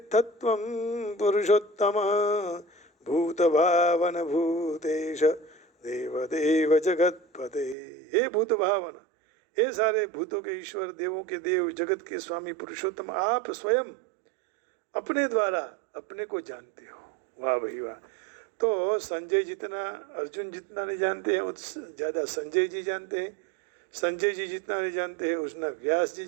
पुरुषोत्तम भूतभावन भूतेश देवदेव जगतपते। हे भूत भावन, हे सारे भूतों के ईश्वर, देवों के देव, जगत के स्वामी पुरुषोत्तम, आप स्वयं अपने द्वारा अपने को जानते हो। वाह भाई वाह। तो संजय जितना अर्जुन जितना नहीं जानते हैं उतना ज़्यादा संजय जी जानते हैं। संजय जी जितना नहीं जानते हैं उतना व्यास जी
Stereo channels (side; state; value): left; drops out; at 7.8 s